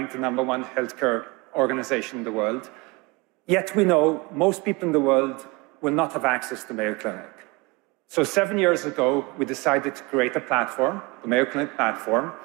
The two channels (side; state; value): left; quieter; 25.9 dB